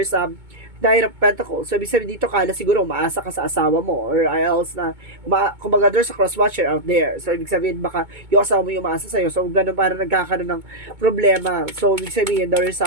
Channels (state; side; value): late; left; 2.2 ms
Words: Knight of Pentacles. So, ibig sabihin dito kala siguro umaasa ka sa asawa mo or else na kumbaga there's a cross-watcher out there. So, ibig sabihin baka yung asawa mo yung umaasa sa'yo. So, ganun parang nagkakaroon ng problema. So, ibig sabihin there is